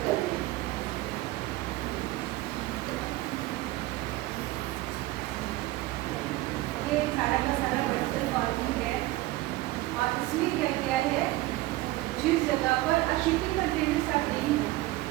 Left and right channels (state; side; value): quieter; left; 18.2 dB